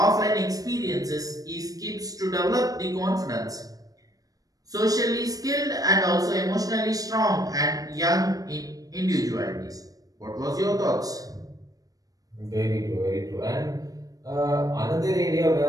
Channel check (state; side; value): late; left; 0.18 ms